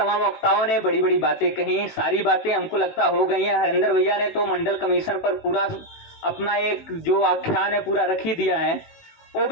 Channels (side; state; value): right; late; 19 ms